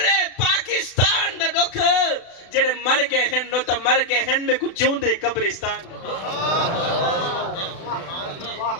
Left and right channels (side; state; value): right; late; 36 ms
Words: پاکستان دا ڈکھ جڑے مر گئے ہیں نو تا مر گئے ہیں میں کو جون دے قبرستان دا